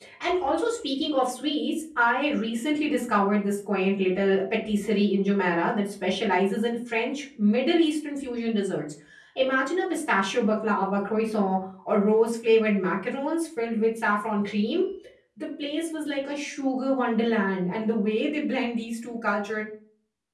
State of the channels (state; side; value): identical; both; correlation 1.00